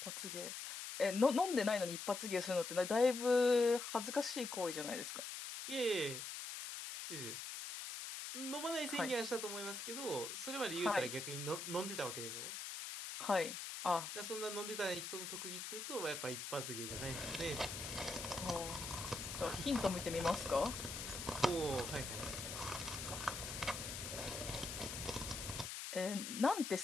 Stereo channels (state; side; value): noise; left; hiss, 6 dB below the sound